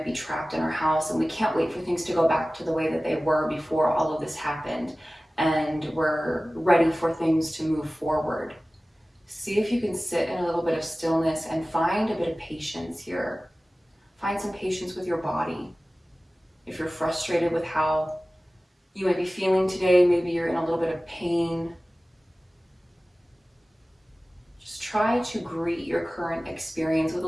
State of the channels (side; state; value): both; normal; correlation 0.97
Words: be trapped in our house and we can't wait for things to go back to the way that they were before all of this happened. And we're ready for things to move forward. See if you can sit in a little bit of stillness and find a bit of patience here. Find some patience with your body. If you're frustrated with how you might be feeling today, maybe you're in a little bit of pain, try to greet your current experience with a